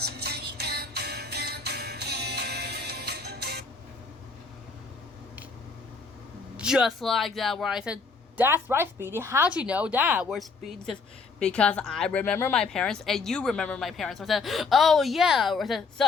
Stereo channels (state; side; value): quieter; right; 4.4 dB